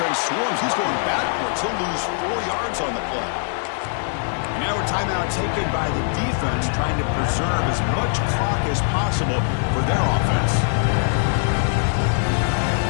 swarms. He's going backwards. He'll lose 4 yards on the play. And now a timeout taken by the defense, trying to preserve as much clock as possible for their offense.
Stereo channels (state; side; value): silent; right; 63 dB below the other